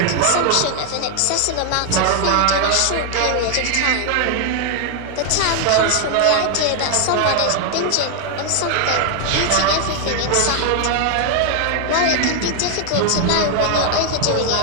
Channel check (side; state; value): both; different; correlation 0.00